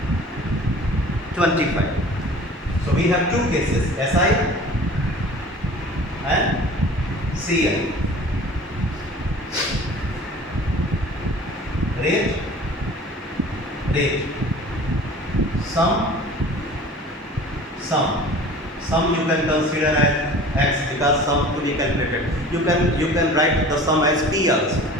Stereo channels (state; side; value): normal; both; correlation 0.43